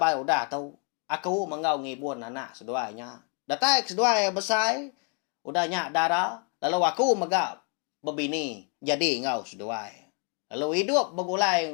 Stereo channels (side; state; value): right; quieter; 36.2 dB